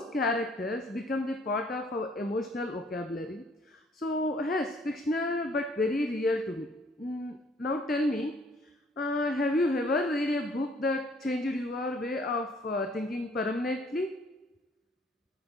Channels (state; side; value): normal; both; correlation 0.61